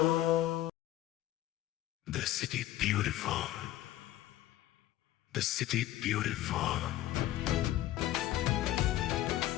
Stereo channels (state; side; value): quieter; right; 14.4 dB